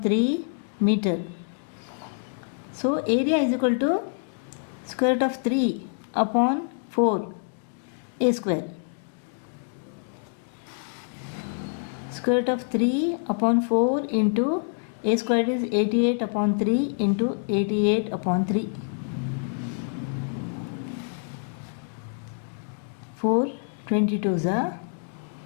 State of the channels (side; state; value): right; silent; 61 dB below the other